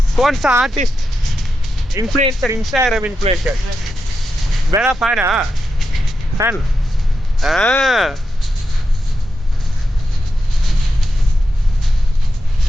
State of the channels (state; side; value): normal; both; correlation 0.88